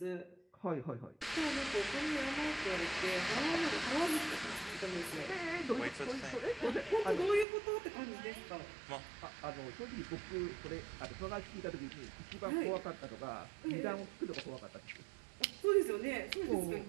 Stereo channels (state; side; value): drops out; left; at 7.5 s